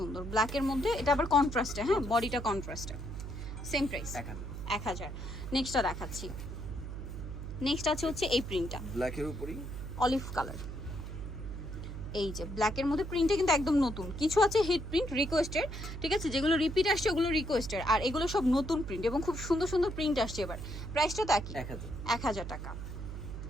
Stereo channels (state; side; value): noise; right; hum, 8 dB below the sound